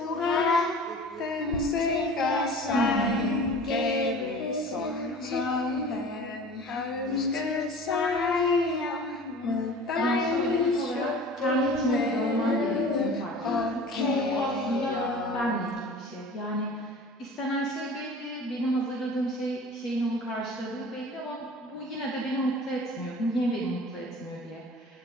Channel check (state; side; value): normal; both; correlation 0.41